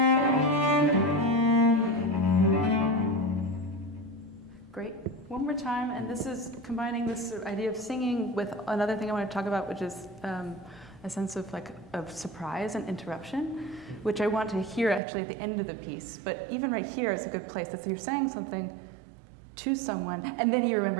Great. One more time, and this is combining this sort of idea of singing with another thing I want to talk about, which is a sense of surprise and interruption, which I want to hear actually at the end of the piece. But even right here is a good place. That you're saying something to someone, and then you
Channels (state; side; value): drops out; left; at 15.0 s